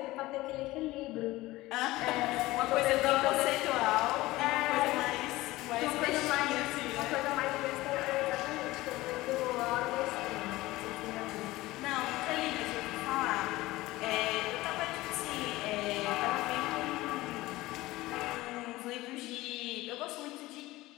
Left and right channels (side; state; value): right; quieter; 18.6 dB